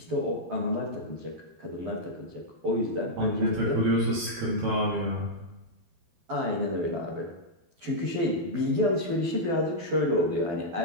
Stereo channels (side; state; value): left; late; 13 ms